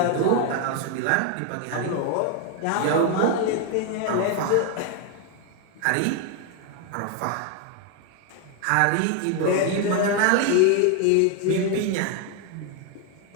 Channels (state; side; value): different; both; correlation 0.01